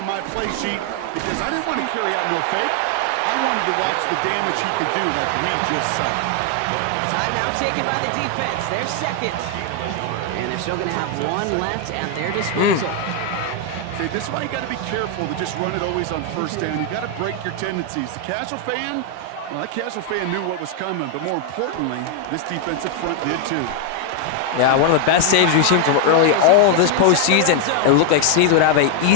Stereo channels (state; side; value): different; both; correlation 0.00